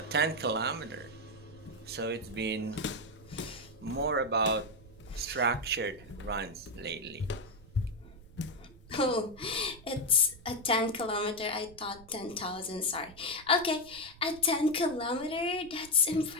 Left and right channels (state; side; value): noise; right; rumble, 21 dB below the sound